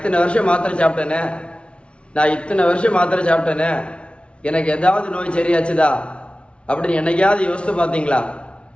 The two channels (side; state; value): right; late; 0.059 ms